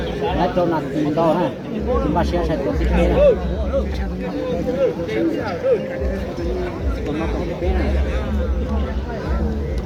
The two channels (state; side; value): identical; both; correlation 1.00